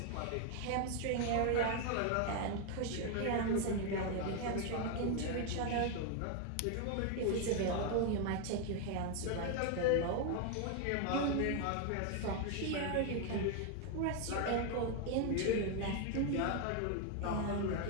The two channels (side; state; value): both; different; correlation 0.01